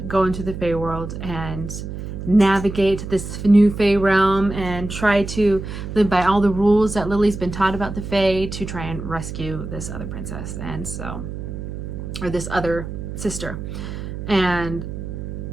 go into the Fae world and navigate this new Fae realm and try to live by all the rules that Lily's been taught about the Fae to try and rescue this other princess, and so, or this other sister, and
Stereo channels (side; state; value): right; noise; hum, 7 dB below the sound